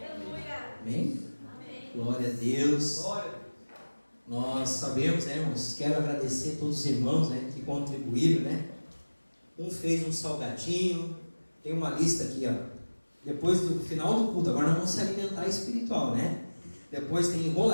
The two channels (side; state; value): both; inverted; correlation -1.00